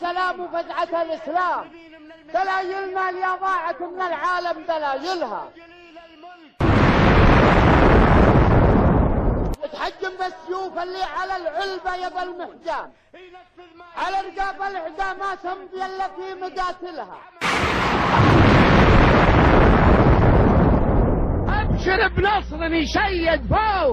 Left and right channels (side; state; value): both; identical; correlation 1.00